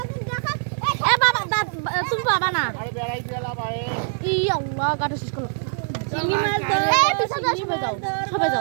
তুমি বাবা না আরে বেড়াই গেলা ভাই ই আল্লাহ গাটা শেষ করো চিংড়ি মাছ ধর এই পিছা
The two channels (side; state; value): left; silent; digital silence